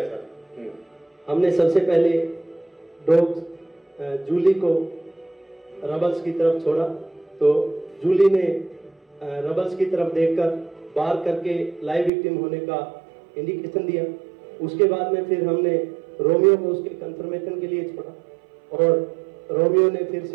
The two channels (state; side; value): drops out; left; at 12.1 s